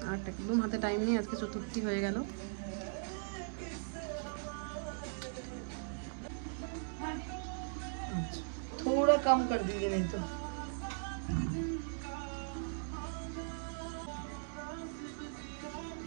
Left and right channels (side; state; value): left; silent; digital silence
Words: আর একদম হাতে টাইম নেই, আজকে চতুর্থী হয়ে গেল। थोड़ा कम कर दीजिए नहीं तो।